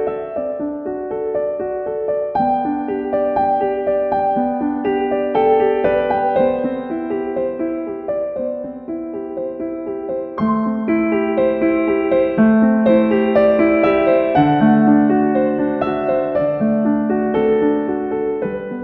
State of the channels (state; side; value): identical; both; correlation 1.00